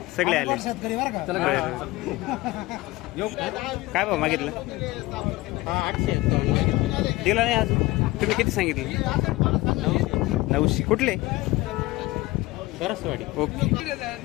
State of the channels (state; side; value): quieter; right; 19.6 dB